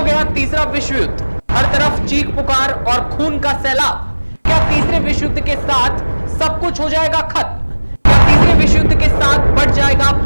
गया तीसरा विश्व युद्ध, हर तरफ चीख पुकार और खून का सैलाब। क्या तीसरे विश्व युद्ध के साथ सब कुछ हो जाएगा खत्म? क्या तीसरे विश्व युद्ध के साथ बढ़ जाएगा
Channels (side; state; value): both; inverted; correlation -1.00